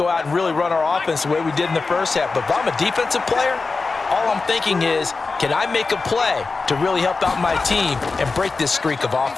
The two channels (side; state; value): right; quieter; 4.1 dB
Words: out and really run our offense the way we did in the first half. But if I'm a defensive player, all I'm thinking is, can I make a play to really help out my team and break this streak of